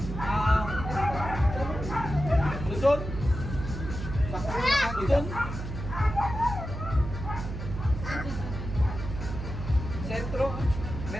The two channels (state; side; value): noise; right; hum, 7 dB below the sound